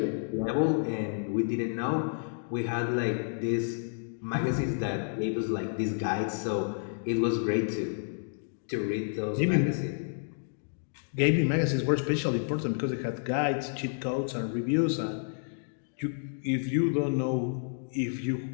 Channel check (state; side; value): silent; right; digital silence